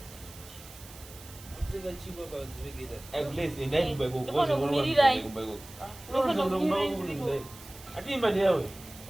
kutenga chingwa panzivegeta atimba ndewe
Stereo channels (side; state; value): right; noise; hiss, 18 dB below the sound